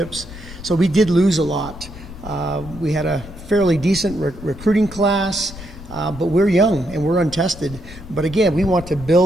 so we did lose a lot. We had a fairly decent recruiting class. But we're young and we're untested. But again, we want to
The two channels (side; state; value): left; noise; rumble, 14 dB below the sound